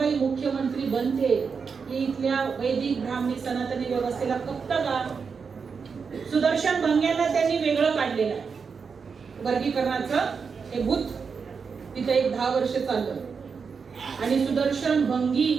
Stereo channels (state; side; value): quieter; left; 5.6 dB